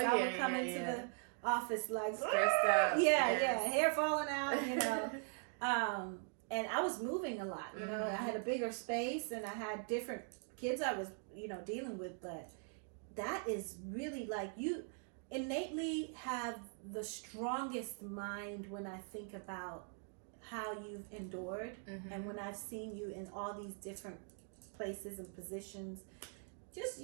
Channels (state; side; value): silent; left; 50 dB below the other